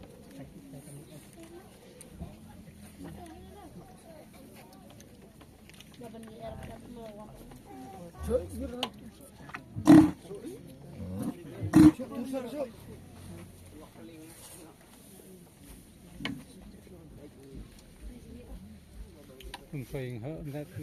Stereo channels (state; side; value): identical; both; correlation 1.00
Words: Không phình hơn ra